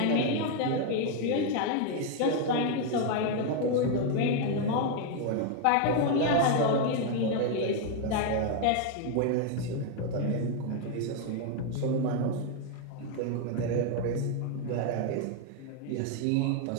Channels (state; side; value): different; both; correlation 0.01